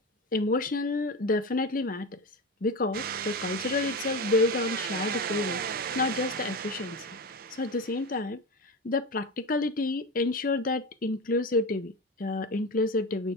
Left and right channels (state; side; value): normal; both; correlation 0.23